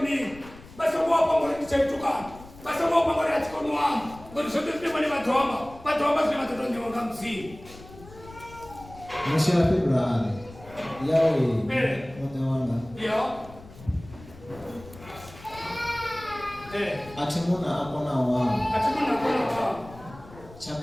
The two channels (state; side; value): noise; left; rumble, 19 dB below the sound